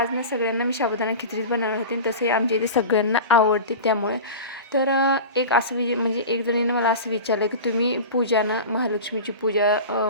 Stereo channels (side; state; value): both; inverted; correlation -0.31